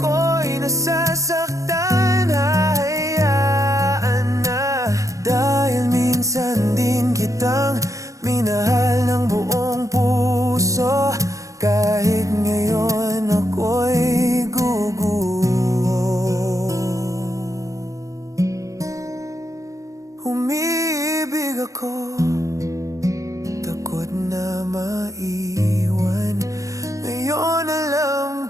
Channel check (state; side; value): late; left; 0.16 ms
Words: nasasaktan, hahayaan na. Dahil minsan din kitang minahal ng buong puso. Kahit ngayon ako'y guguho. Umiibig ako, takot na maiwan. Ngayon alam